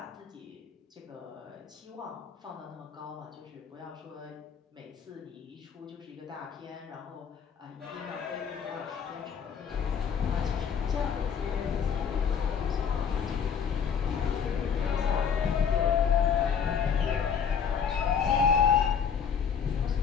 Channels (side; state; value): right; quieter; 7.1 dB